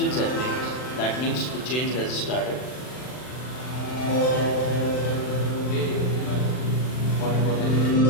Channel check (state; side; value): late; right; 39 ms